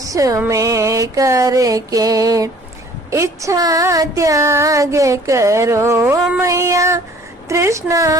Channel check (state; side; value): normal; both; correlation 0.54